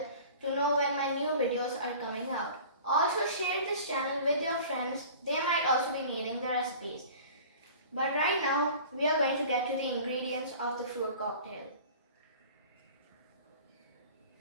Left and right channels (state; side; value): inverted; both; correlation -0.42